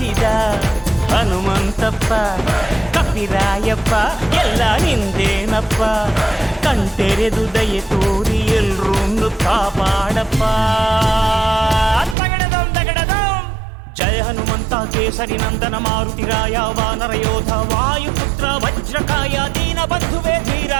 ಹನುಮಂತಪ್ಪ ಕಪಿರಾಯಪ್ಪ ಎಲ್ಲ ನಿಂದೇನಪ್ಪ. ಕಣ್ತೆರೆದು ದಯೆ ತೋರಿ ಎಲ್ರೂ ಕಾಪಾಡಪ್ಪ. ಜಯ ಹನುಮಂತ ಕೇಸರಿ ನಂದನ ಮಾರುತಿರಾಯ ವಾನರ ಯೋಧ ವಾಯುಪುತ್ರ ವಜ್ರಕಾಯ ದೀನ ಬಂಧುವೇ ಧೀರ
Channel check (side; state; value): left; drops out; at 12.2 s